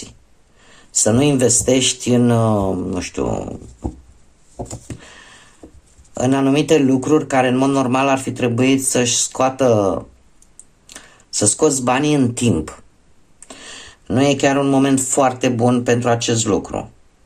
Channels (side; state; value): both; identical; correlation 1.00